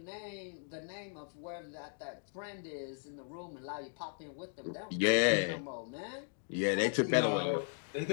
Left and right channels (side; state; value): right; silent; 53 dB below the other